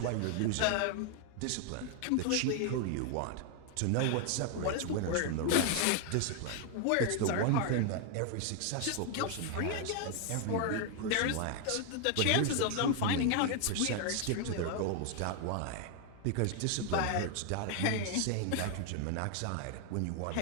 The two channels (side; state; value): both; different; correlation 0.00